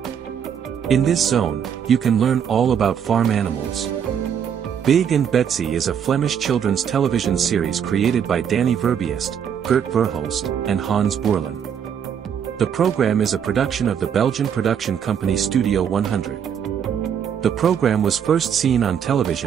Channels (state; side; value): quieter; left; 8.1 dB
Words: In this zone, you can learn all about farm animals. Big and Betsy is a Flemish children's television series created by Danny Verbiest, Gert Verhulst, and Hans Boerlen. The program is a production of the Belgian production company Studio 100. The program was first seen on